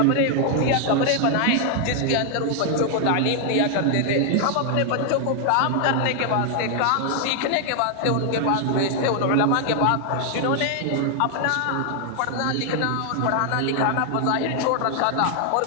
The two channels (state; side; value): different; both; correlation 0.00